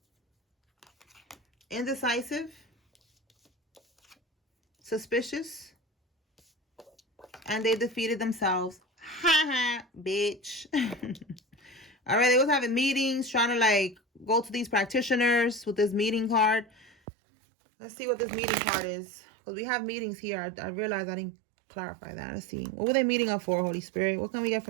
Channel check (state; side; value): drops out; left; at 16.9 s